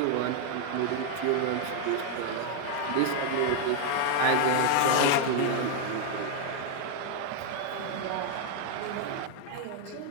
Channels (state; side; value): different; both; correlation 0.00